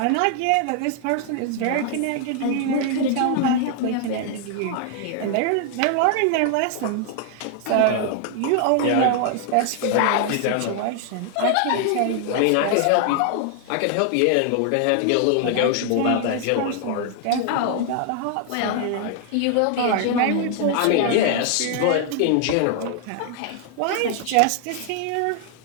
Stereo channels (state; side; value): different; both; correlation 0.00